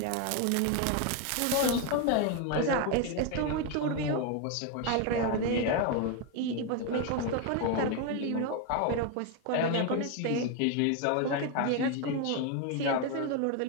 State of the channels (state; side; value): different; both; correlation 0.01